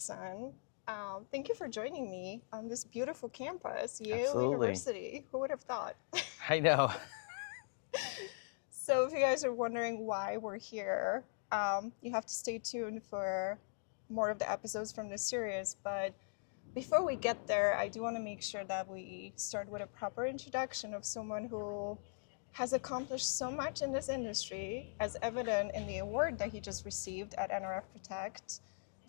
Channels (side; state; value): right; silent; digital silence